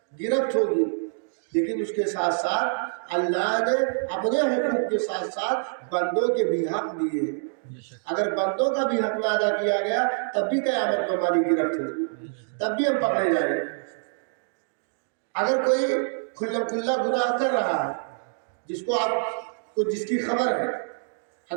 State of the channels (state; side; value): silent; left; digital silence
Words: گرفت ہوگی. لیکن اس کے ساتھ ساتھ اللہ نے اپنے حقوق کے ساتھ ساتھ بندوں کے بھی حق دیے ہیں. اگر بندوں کا بھی حق نہ ادا کیا گیا تب بھی قیامت میں ہماری گرفت ہوگی، تب بھی ہم پکڑے جائیں گے. اگر کوئی کھلا کھلا گناہ کر رہا ہے جس کو آپ کو جس کی خبر ہے،